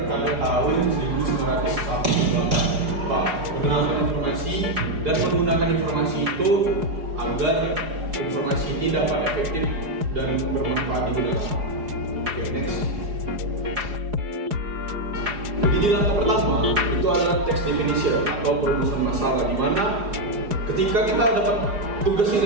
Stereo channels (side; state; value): left; late; 4.8 ms